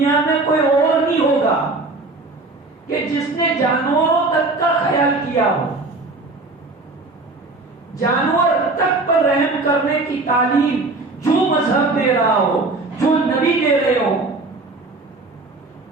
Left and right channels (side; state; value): left; quieter; 3.3 dB